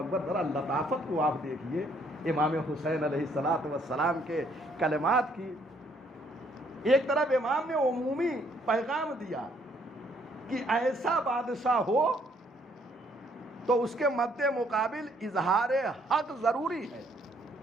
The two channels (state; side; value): normal; both; correlation 0.67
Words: ذرا لطافت کو آپ دیکھیے امام حسین علیہ السلام کے کلمات کی۔ ایک طرف امام نے عمومی پیغام دیا کہ ایسا بادشاہ ہو تو اس کے مد مقابل اظہار حق ضروری ہے،